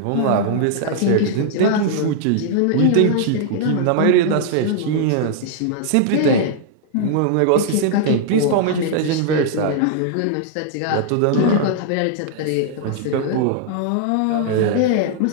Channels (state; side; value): different; both; correlation -0.01